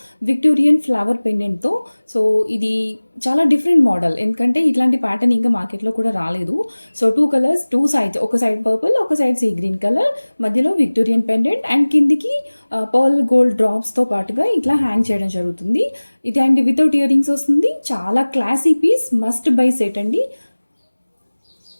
విక్టోరియన్ ఫ్లవర్ పెండెంట్తో. సో ఇది చాలా డిఫరెంట్ మోడల్, ఎందుకంటే ఇట్లాంటి ప్యాటర్న్ ఇంకా మార్కెట్లో కూడా రాలేదు. సో 2 కలర్స్, 2 సైడ్స్, ఒక సైడ్ పర్పుల్, ఒక సైడ్ సీ గ్రీన్ కలర్, మధ్యలో విక్టోరియన్ పెండెంట్ అండ్ కిందికి పర్ల్ గోల్డ్ డ్రాప్స్తో పాటుగా ఇట్లా హ్యాంగ్ చేయడం జరుగుతుంది. ఇది అండ్ వితౌట్ ఇయర్ రింగ్స్ వస్తుంది. చాలా classy piece, must buy set అండి.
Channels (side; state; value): both; inverted; correlation -1.00